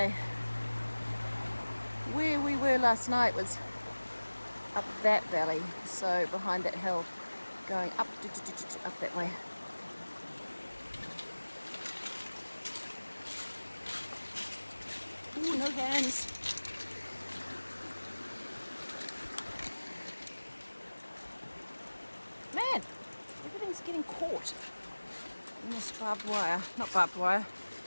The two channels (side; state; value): both; inverted; correlation -1.00